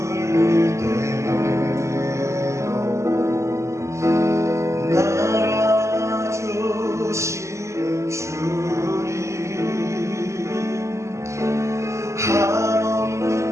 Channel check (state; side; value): late; left; 0.14 ms